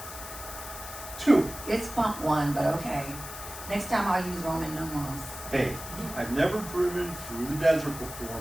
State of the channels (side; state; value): left; noise; hiss, 11 dB below the sound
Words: 2. It's pump 1, but okay. Next time I'll use Roman numerals. Hey, I've never driven through the desert before,